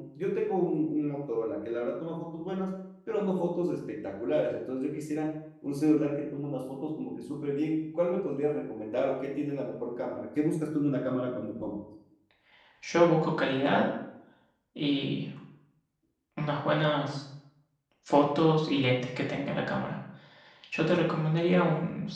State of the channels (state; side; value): identical; both; correlation 1.00